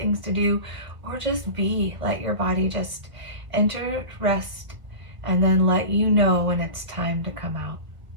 to do, or just be. Let your body just enter rest and then let you know when it's time to come out.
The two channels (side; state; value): left; late; 1.6 ms